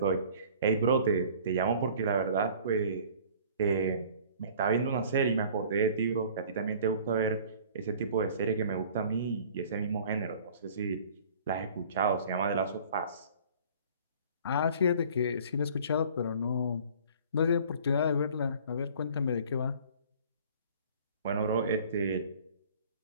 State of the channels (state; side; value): inverted; both; correlation -0.49